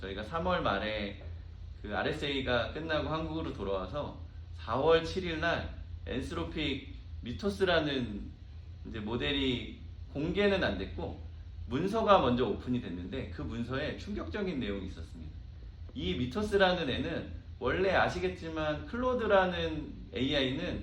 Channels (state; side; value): identical; both; correlation 1.00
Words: 3월 말에 그 RSA가 끝나고 한국으로 돌아와서 4월 7일 날 엔스로픽 미토스라는 이제 모델이 공개는 안 됐고 문서가 먼저 오픈이 됐는데 그 문서에 충격적인 내용이 있었습니다. 이 미토스라는 애는 원래 아시겠지만 클로드라는